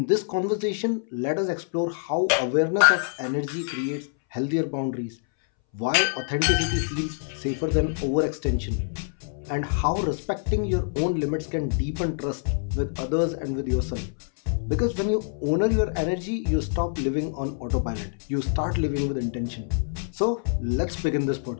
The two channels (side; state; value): right; silent; 61 dB below the other